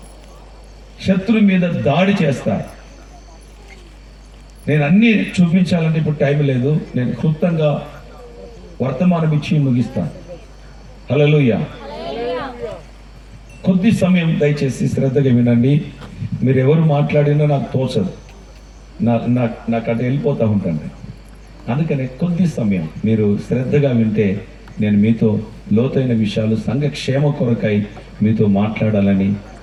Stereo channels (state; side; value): identical; both; correlation 1.00